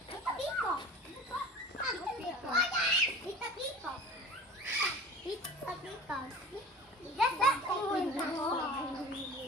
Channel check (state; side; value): normal; both; correlation 0.40